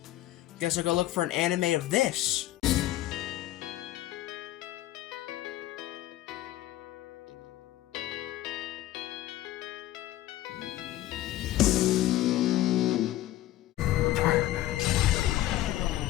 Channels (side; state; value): right; quieter; 14.7 dB